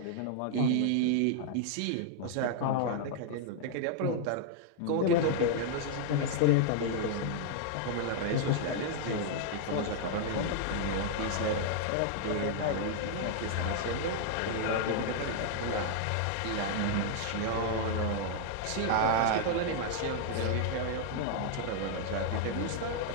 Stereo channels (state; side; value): different; both; correlation -0.01